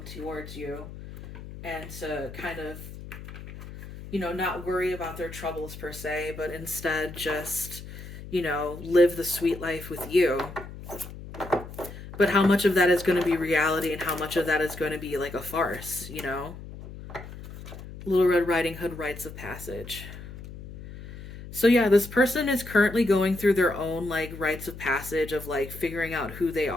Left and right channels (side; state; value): left; noise; hum, 13 dB below the sound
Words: towards you and to kind of, not worry about their troubles per se, but instead just, live the sweet life with you. But how much of that is going to be reality and how much of that is going to be like a farce, Little Red Riding Hood rites of passage. So yeah, this person is currently going through their own like rites of passage of like figuring out who they